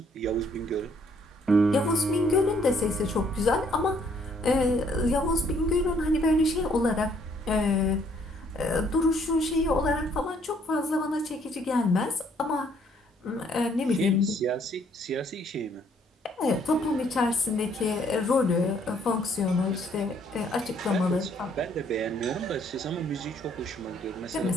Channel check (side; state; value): both; normal; correlation 0.65